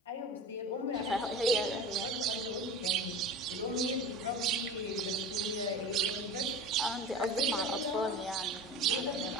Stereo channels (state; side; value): normal; both; correlation 0.33